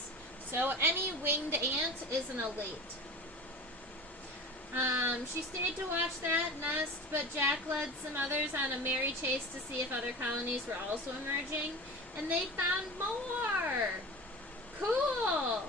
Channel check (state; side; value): normal; both; correlation 0.34